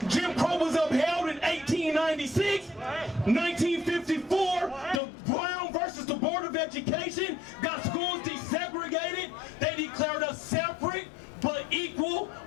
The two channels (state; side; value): drops out; right; at 5.0 s